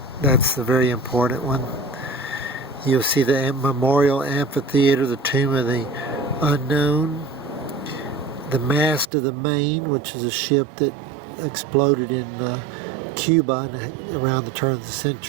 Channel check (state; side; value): drops out; left; at 9.1 s